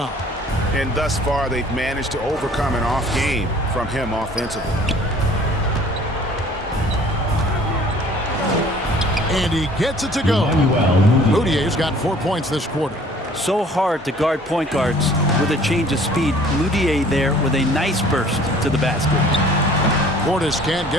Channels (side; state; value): both; normal; correlation 0.52